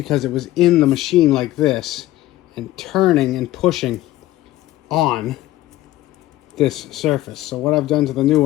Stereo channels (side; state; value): right; quieter; 15.6 dB